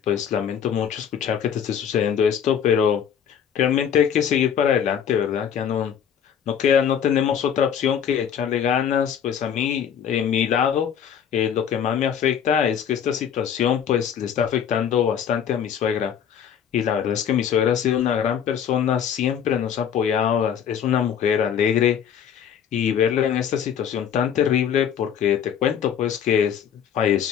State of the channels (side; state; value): right; quieter; 8.4 dB